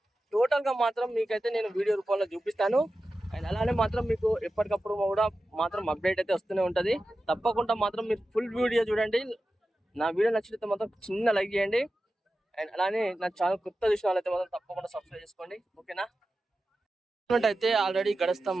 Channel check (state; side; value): normal; both; correlation 0.93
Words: టోటల్గా మాత్రం మీకైతే నేను వీడియో రూపంలో చూపిస్తాను. అండ్ అలానే మాత్రం మీకు ఎప్పటికప్పుడు కూడా మాత్రం అప్డేట్ అయితే వస్తూనే ఉంటుంది. తప్పకుండా మాత్రం మీరు ఫుల్ వీడియో చూడండి. నా వీడియో నచ్చితే మాత్రం చిన్న లైక్ చేయండి. అండ్ అలానే నా ఛానల్ కొత్త చూసిన వాళ్ళైతే మాత్రం తప్పకుండా సబ్స్క్రైబ్ చేసుకోండి, ఓకేనా. అయితే ఆల్రెడీ